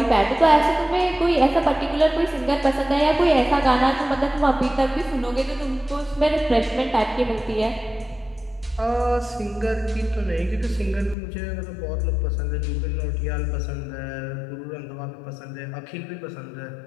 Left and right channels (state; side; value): drops out; right; at 11.2 s